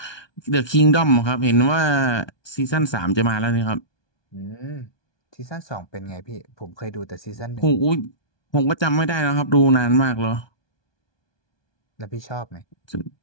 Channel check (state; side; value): late; right; 1.2 ms